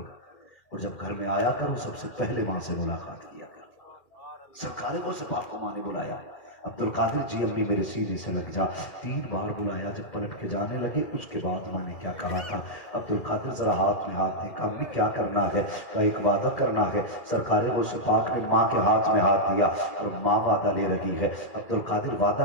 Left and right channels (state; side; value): late; right; 2.4 ms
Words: और जब घर में आया करो सबसे पहले मां से मुलाकात किया करो। सरकार गौसे पाक को मां ने बुलाया, अब्दुल कादिर जी अम्मी मेरे सीने से लग जा, 3 बार बुलाया। जब पलट के जाने लगे उसके बाद मां ने क्या कहा था, अब्दुल कादिर जरा हाथ में हाथ देखा, अम्मी क्या करना है, का एक वादा करना है। सरकार गौसे पाक ने मां के हाथ में हाथ दिया और मां वादा ले रही है, अब्दुल कादिर वादा